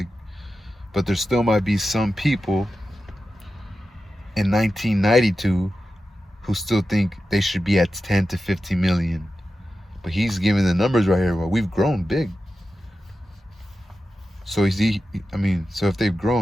but there still might be some people in 1992 who still think they should be at 10 to 15 million. But he's giving the numbers right here. Well, we've grown big. So so if they've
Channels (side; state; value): both; normal; correlation 0.92